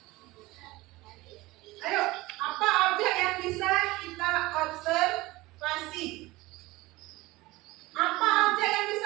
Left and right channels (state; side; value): quieter; left; 20.2 dB